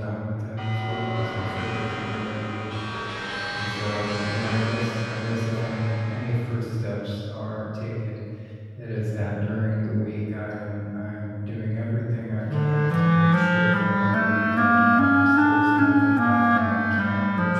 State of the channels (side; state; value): both; identical; correlation 1.00